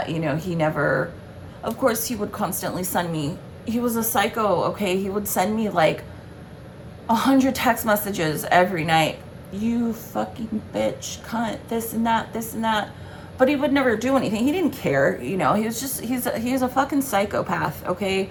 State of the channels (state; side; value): identical; both; correlation 1.00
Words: He never, of course, he would constantly send me, he was a psycho, okay? He would send me like 100 text messages every night. You fucking bitch, cunt, this and that. But he would never do anything. He didn't care, he was just, he's a fucking psychopath, okay?